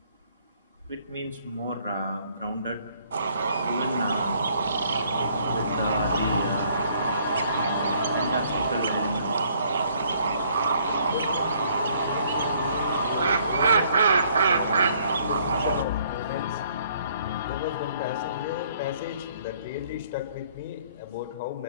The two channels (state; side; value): inverted; both; correlation -0.63